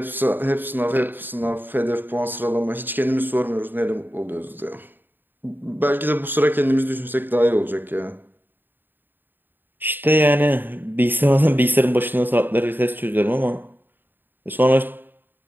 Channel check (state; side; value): late; left; 0.093 ms